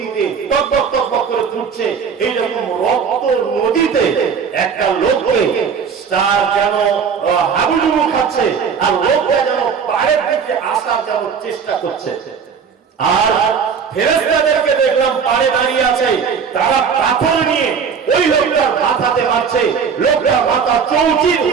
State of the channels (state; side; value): quieter; left; 6.5 dB